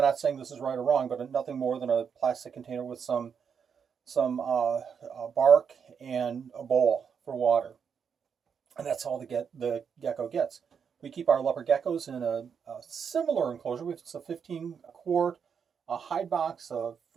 not saying this is right or wrong, but nothing more than a plastic container with some bark and a bowl for water. And that's all the gecko gets. We keep our leopard geckos in a similar enclosure. It's a 15-quart hide box, a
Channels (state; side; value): quieter; left; 6.9 dB